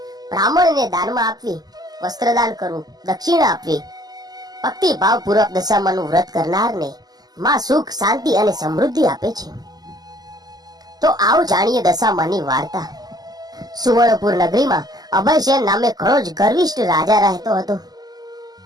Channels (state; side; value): late; left; 0.19 ms